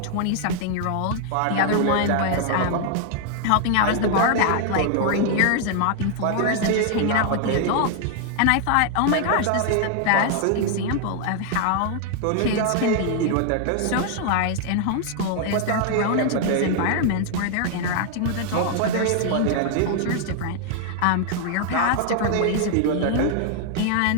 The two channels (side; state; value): both; different; correlation 0.00